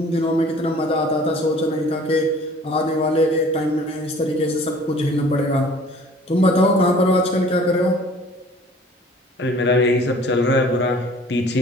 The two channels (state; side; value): normal; both; correlation 0.50